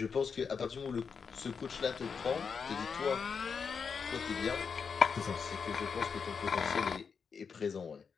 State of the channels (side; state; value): right; quieter; 5.9 dB